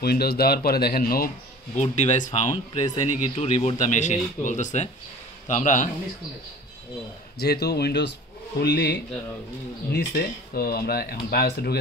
উইন্ডোজ দেওয়ার পরে দেখেন নো বুট ডিভাইস ফাউন্ড, প্রেস এনি কি টু রিবুট দ্য মেশিন বলতেছে। তো আমরা যেহেতু উইন্ডোজ ফুললি নিচে, তো আমরা এখন বায়োসে ঢুকে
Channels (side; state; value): both; normal; correlation 0.43